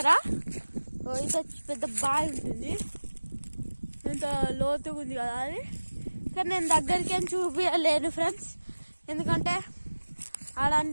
ఇంత పెద్ద బావి ఉంటుంది, ఇంత లోతుగా ఉంది కదా అది. కానీ నేను దగ్గరికి ఏం చూపించలేను ఫ్రెండ్స్, ఎందుకంటే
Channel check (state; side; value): inverted; both; correlation -1.00